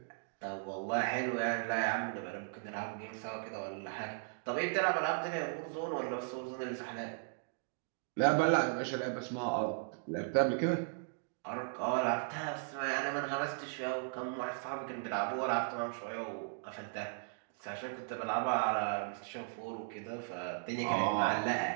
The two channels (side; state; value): left; silent; digital silence